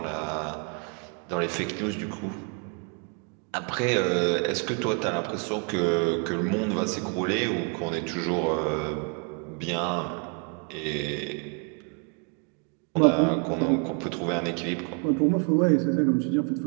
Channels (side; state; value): left; quieter; 37.6 dB